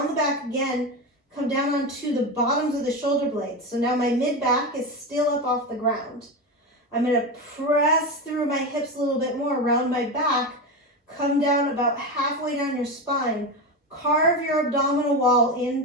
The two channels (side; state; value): both; normal; correlation 0.18